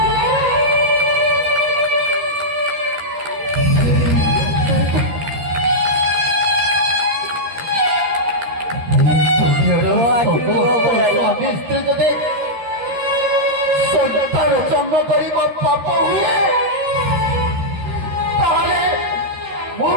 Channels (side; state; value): left; late; 13 ms